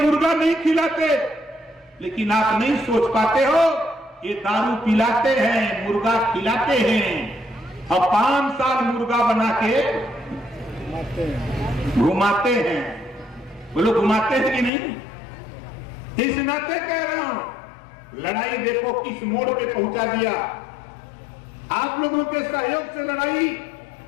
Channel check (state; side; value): drops out; right; at 14.7 s